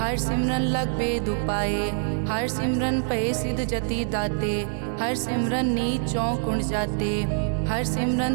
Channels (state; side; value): silent; left; 62 dB below the other